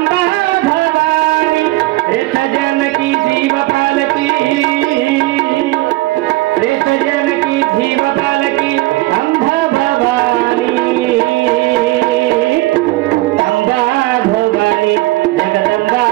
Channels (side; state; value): left; quieter; 19.5 dB